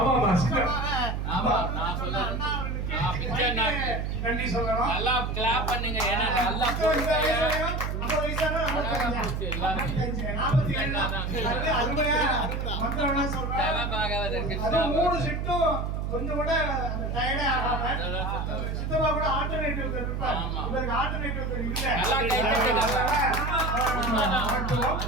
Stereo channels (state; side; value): noise; right; hum, 2 dB below the sound